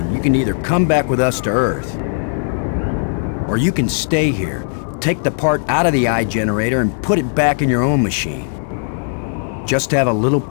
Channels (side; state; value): right; silent; 68 dB below the other